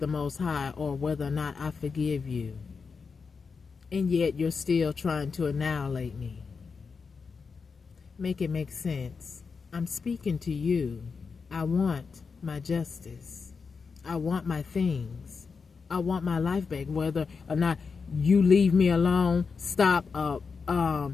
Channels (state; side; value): quieter; right; 5.2 dB